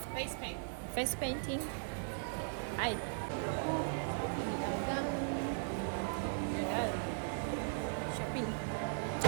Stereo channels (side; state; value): left; silent; digital silence